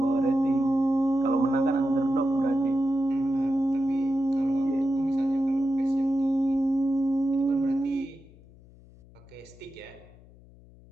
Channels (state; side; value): noise; left; hum, 24 dB below the sound